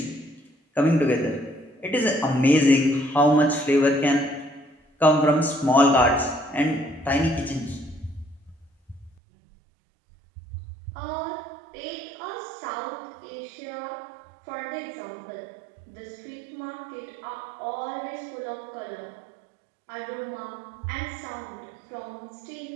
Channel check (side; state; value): left; drops out; at 9.1 s